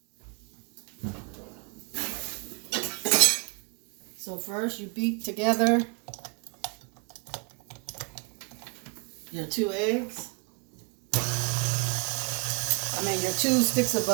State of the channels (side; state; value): left; quieter; 36.2 dB